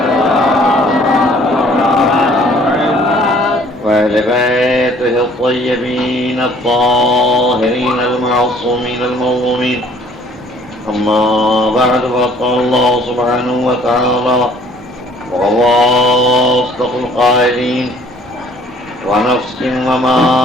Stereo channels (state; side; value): normal; both; correlation 0.57